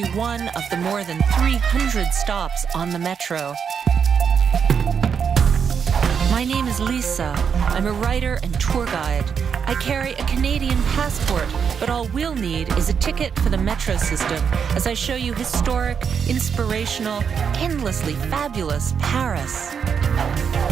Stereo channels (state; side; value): quieter; left; 6.9 dB